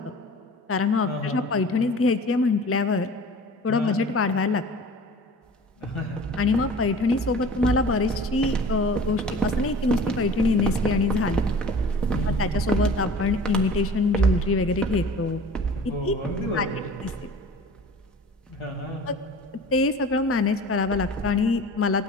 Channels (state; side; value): normal; both; correlation 0.42